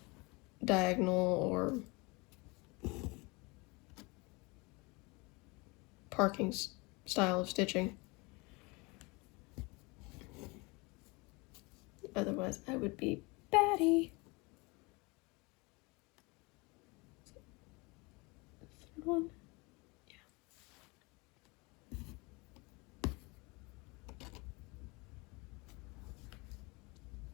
diagonal or parking style of stitching. Otherwise, I would be batty. Third one.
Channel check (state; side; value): quieter; right; 26.6 dB